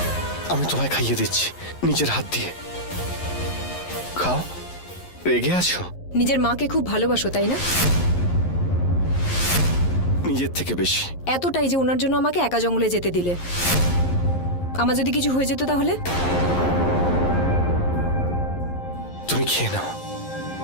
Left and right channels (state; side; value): late; right; 11 ms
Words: আমি তোমায় খাইয়ে দিচ্ছি নিজের হাত দিয়ে। খাও। রেগে আছো? নিজের মাকে খুব ভালোবাসো তাই না? নিজের থেকে বেশি। এতটাই যে ওনার জন্য আমাকে একা জঙ্গলে যেতে দিলে। আমার যদি কিছু হয়ে যেত তাহলে? তুমি খেয়ে নাও।